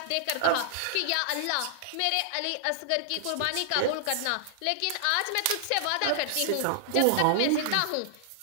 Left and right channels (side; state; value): both; different; correlation -0.01